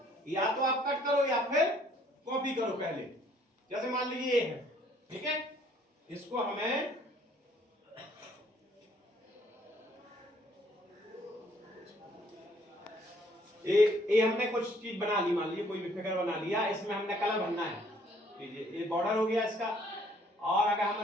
या तो आप कट करो या फिर कॉपी करो। पहले जैसे मान लीजिए ये है, ठीक है, इसको हमें ये हमने कुछ चीज बना ली, मान लीजिए कोई भी फिगर बना लिया, इसमें हमने कलर भरना है। ये बॉर्डर हो गया इसका। और अगर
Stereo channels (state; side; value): normal; both; correlation 0.62